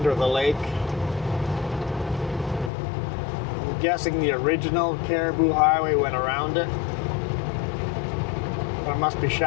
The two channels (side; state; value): right; drops out; at 2.7 s